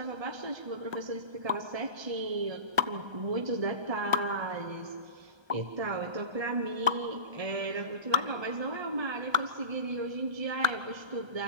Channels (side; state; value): left; late; 1.3 ms